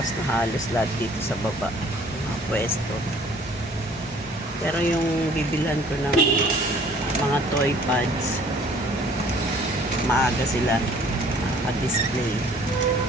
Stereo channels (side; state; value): both; normal; correlation 0.55